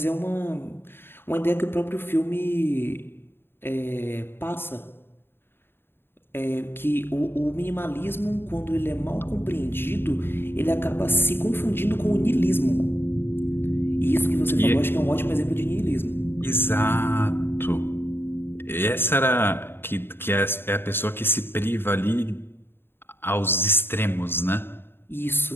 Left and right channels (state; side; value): late; right; 0.11 ms